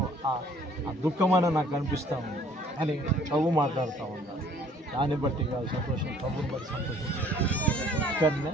ఆ దుఃఖమైన నాకు అనిపిస్తూ ఉంది, అని ప్రభు మాట్లాడుతూ ఉన్నాడు. దాన్ని బట్టి కాదు సంతోషం, ప్రభుని బట్టి సంతోషించాడు. ఇక్కడనే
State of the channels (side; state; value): both; normal; correlation 0.57